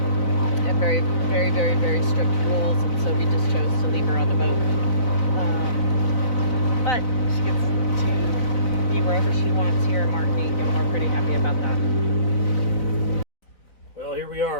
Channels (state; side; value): late; right; 4.0 ms